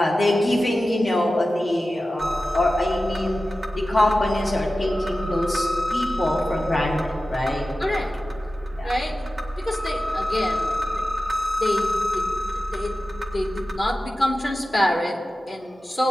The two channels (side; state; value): both; normal; correlation 0.94